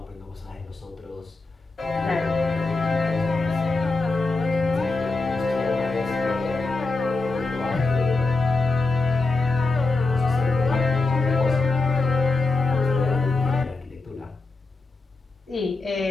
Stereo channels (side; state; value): right; quieter; 3.5 dB